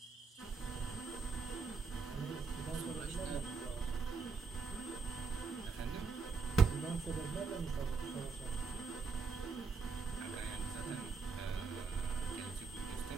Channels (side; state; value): left; quieter; 4.8 dB